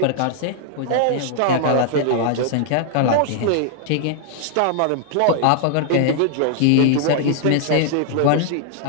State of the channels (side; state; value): both; different; correlation 0.00